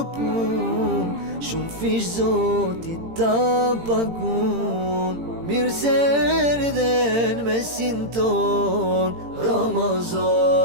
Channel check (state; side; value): late; left; 18 ms